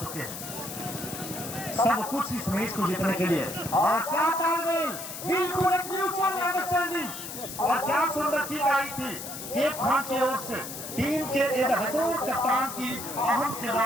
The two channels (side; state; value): left; noise; hiss, 9 dB below the sound